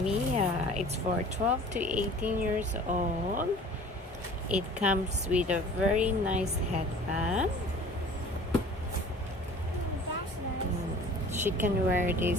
It's for 12 to 18 years old. It comes with a very nice headband. That's nice. She can wear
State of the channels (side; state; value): both; normal; correlation 0.46